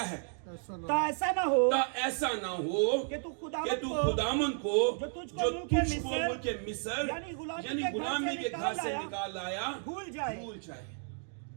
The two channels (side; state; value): left; silent; 56 dB below the other